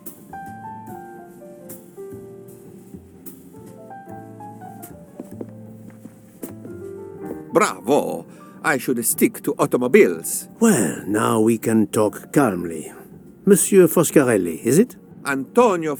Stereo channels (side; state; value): both; identical; correlation 1.00